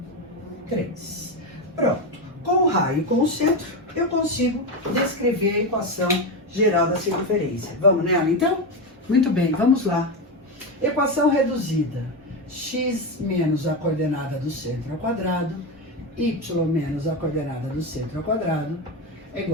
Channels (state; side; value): normal; both; correlation 0.14